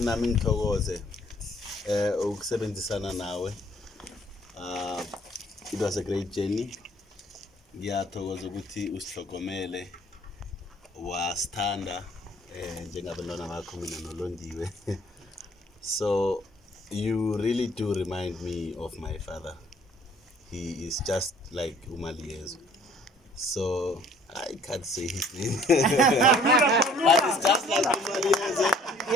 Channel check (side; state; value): both; normal; correlation 0.56